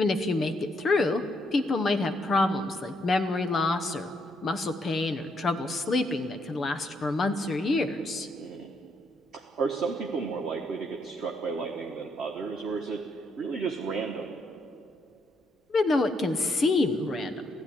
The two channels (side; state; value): both; normal; correlation 0.75